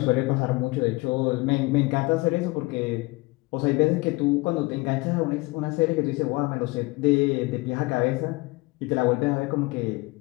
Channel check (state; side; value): quieter; right; 23.7 dB